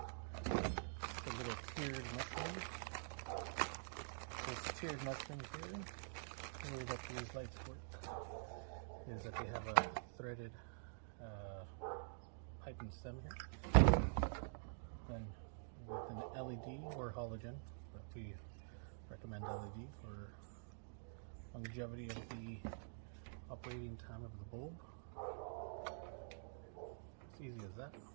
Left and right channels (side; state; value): left; silent; digital silence